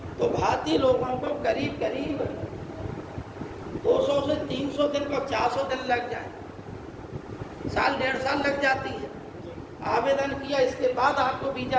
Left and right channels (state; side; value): identical; both; correlation 1.00